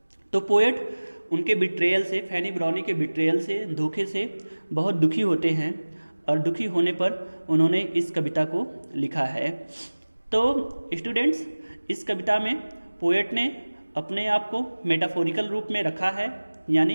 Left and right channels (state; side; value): inverted; both; correlation -1.00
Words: तो पोएट उनके बिट्रेयल से, फैनी ब्राउनी के बिट्रेयल से, धोखे से बहुत दुखी होते हैं और दुखी होने पर उन्होंने इस कविता को लिखा है. तो स्टूडेंट्स, इस कविता में पोएट ने अपने आप को मेटाफोरिकल रूप में रखा है,